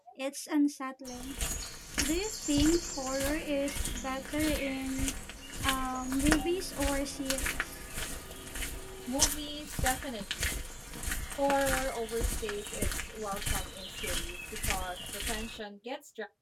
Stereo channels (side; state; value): both; identical; correlation 1.00